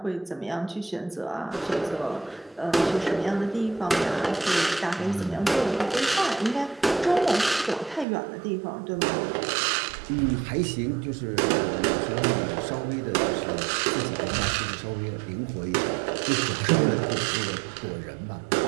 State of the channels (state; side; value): drops out; left; at 8.1 s